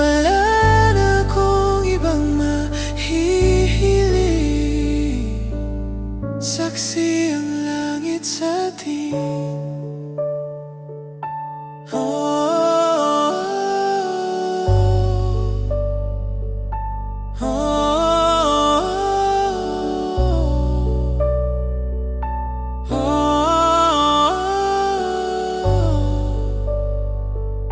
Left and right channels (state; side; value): identical; both; correlation 1.00